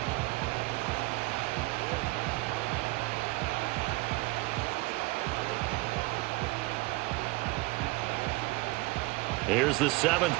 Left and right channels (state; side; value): quieter; left; 23.0 dB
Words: Here's the 7th